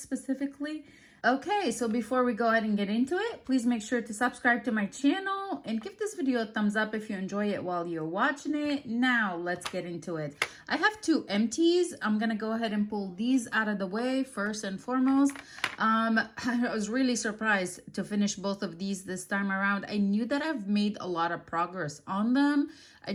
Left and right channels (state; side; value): identical; both; correlation 1.00